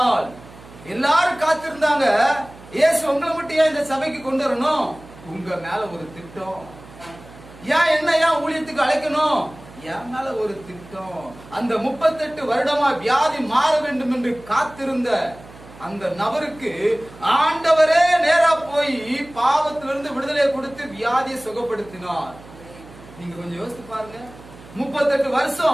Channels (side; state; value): right; noise; hum, 20 dB below the sound